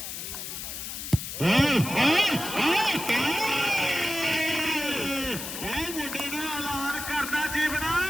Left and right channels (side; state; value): left; noise; hiss, 7 dB below the sound